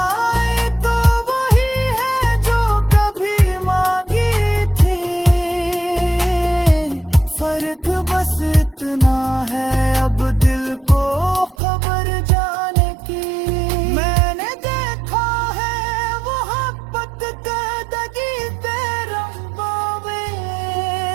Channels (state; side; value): drops out; left; at 11.6 s